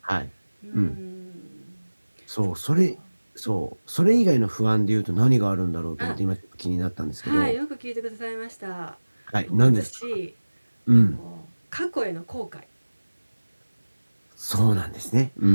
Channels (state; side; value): inverted; both; correlation -1.00